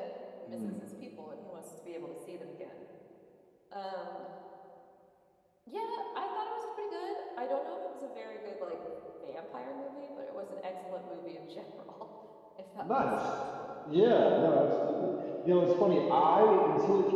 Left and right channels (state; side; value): identical; both; correlation 1.00